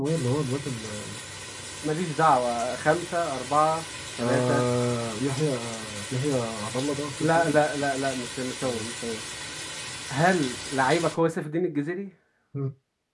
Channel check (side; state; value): both; identical; correlation 1.00